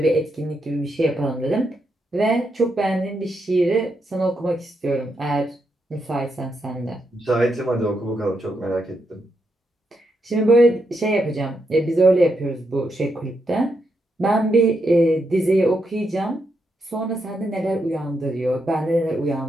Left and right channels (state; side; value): normal; both; correlation 0.82